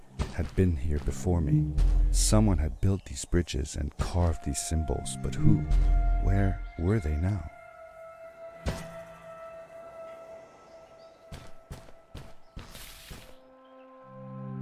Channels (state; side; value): identical; both; correlation 1.00